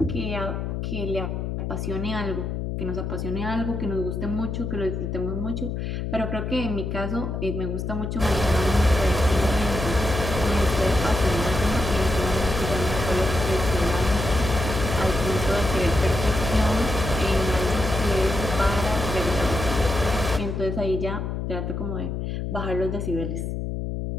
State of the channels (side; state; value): left; noise; hum, 3 dB below the sound